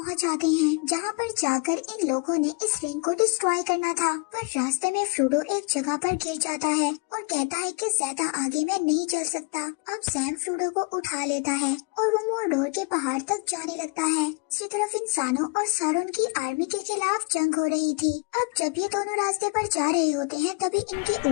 जाते हैं, जहाँ पर जाकर इन लोगों ने इस रिंग को डिस्ट्रॉय करना था। पर रास्ते में फ्रोडो एक जगह पर गिर जाता है और कहता है कि ज्यादा आगे मैं नहीं चल सकता। अब सैम फ्रोडो को उठा लेता है और वो मोर्डोर के पहाड़ तक जाने लगता है। दूसरी तरफ इंसानों और सारून की आर्मी के खिलाफ जंग हो रही थी। अब जब ये दोनों रास्ते पर जा रहे होते हैं तभी इनके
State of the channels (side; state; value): right; quieter; 31.8 dB